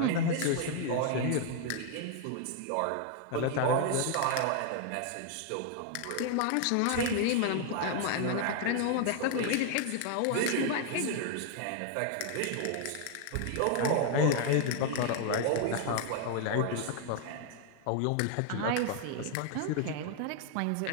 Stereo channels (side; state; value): both; different; correlation 0.00